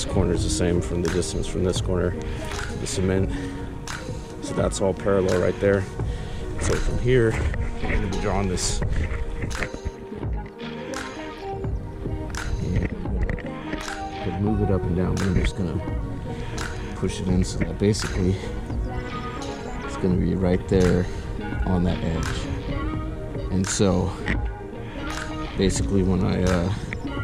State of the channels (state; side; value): identical; both; correlation 1.00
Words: corner is the same from the distance from this corner to the cement. So that's all parallel right there. So from here, I'm going to be drawing this. And move it up and down, but I'm just going to push it in so that basically it's going to be right there on that edge. And so basically when I